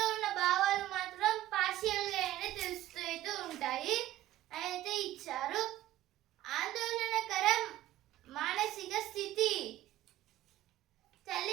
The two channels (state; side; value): quieter; left; 14.4 dB